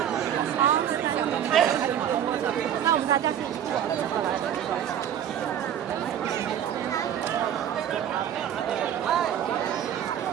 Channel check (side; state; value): left; quieter; 9.8 dB